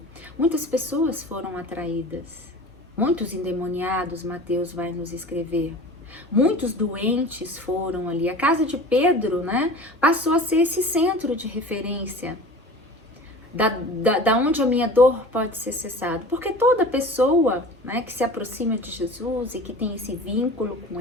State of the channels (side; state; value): both; normal; correlation 0.39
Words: muitas pessoas foram atraídas, muitos endemoniados, Mateus vai nos escrever, muitos doentes foram ali. A casa de Pedro, né, passou a ser esse centro de referência, da onde a minha dor pode ser cessada, porque toda pessoa, né, que se aproxima de Jesus e que tem esse vínculo com